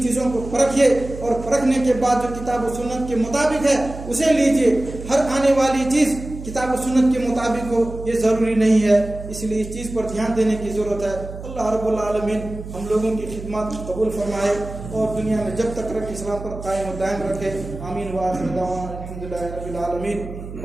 چیزوں کو پرکھیے، اور پرکھنے کے بعد جو کتاب و سنت کے مطابق ہے اسے لیجئے۔ ہر آنے والی چیز کتاب و سنت کے مطابق ہو یہ ضروری نہیں ہے، اس لیے اس چیز پر دھیان دینے کی ضرورت ہے۔ اللہ رب العالمین ہم لوگوں کی خدمات قبول فرمائے، اور دنیا میں جب تک رکھ اسلام پر قائم و دائم رکھے۔ آمین وآخر دعوانا الحمدللہ رب العالمین۔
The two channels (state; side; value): noise; right; hum, 11 dB below the sound